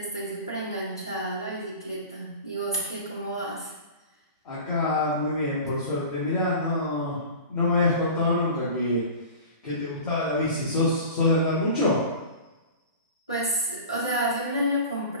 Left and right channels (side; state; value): both; inverted; correlation -0.37